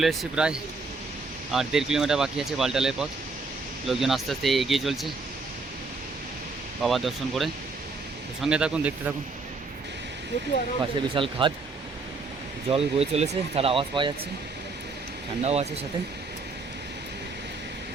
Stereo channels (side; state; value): left; quieter; 3.9 dB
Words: এসেছি প্রায়, আর 1.5 কিলোমিটার বাকি আছে বালটালের পথ। লোকজন আস্তে আস্তে এগিয়ে চলছে বাবা দর্শন করে। তো সঙ্গে থাকুন, দেখতে থাকুন। পাশে বিশাল খাদ, জল বয়ে চলেছে, তার আওয়াজ পাওয়া যাচ্ছে, ঠান্ডাও আছে সাথে।